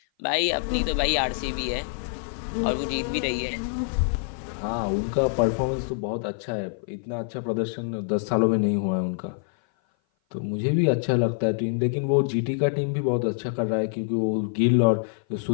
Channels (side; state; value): right; silent; 56 dB below the other